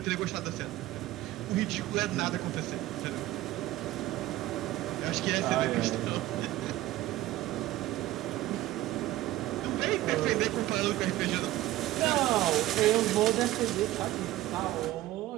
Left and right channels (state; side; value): quieter; left; 15.9 dB